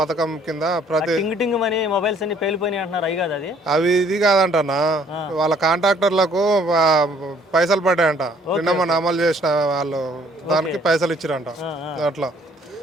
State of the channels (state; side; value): normal; both; correlation 0.61